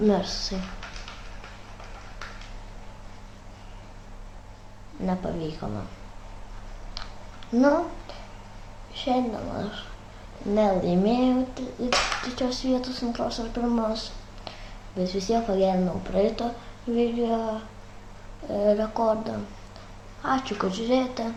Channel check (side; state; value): both; identical; correlation 1.00